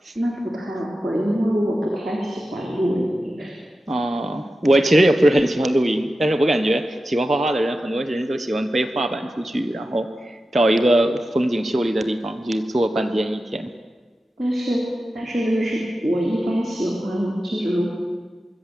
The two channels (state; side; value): normal; both; correlation 0.92